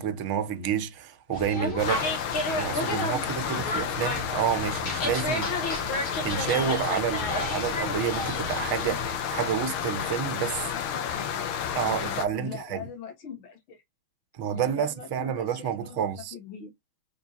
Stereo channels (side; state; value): right; late; 6.3 ms